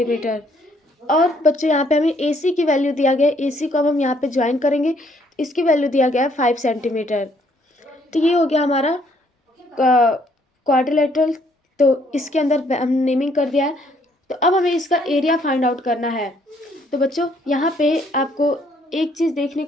और बच्चों यहाँ पे हमें AC की वैल्यू दिया गया है, AC को अब हम यहाँ पे ज्वाइन करेंगे, इसकी वैल्यू दिया गया है 5 सेंटीमीटर। तो ये हो गया हमारा क्वाड्रिलेटरल। तो इसके अंदर हम नेमिंग कर दिया है। तो अब हमें इसका एरिया फाइंड आउट करना है। तो बच्चों यहाँ पे आपको एक चीज़ देखने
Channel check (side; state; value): both; normal; correlation 0.67